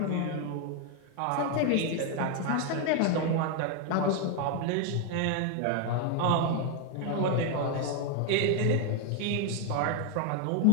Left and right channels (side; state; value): both; different; correlation 0.01